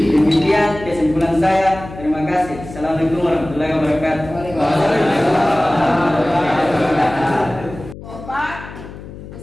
kesimpulan saya. Terima kasih. Assalamualaikum warahmatullahi wabarakatuh.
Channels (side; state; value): left; noise; hum, 14 dB below the sound